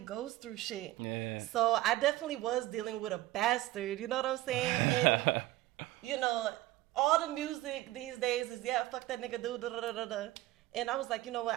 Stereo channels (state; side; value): quieter; left; 16.9 dB